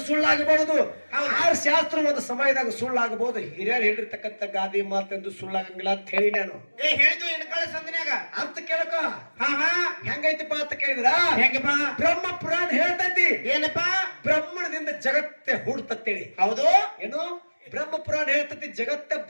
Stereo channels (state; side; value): inverted; both; correlation -1.00